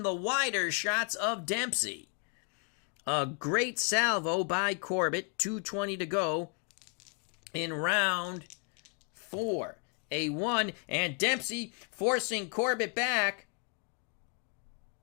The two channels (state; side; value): quieter; right; 36.2 dB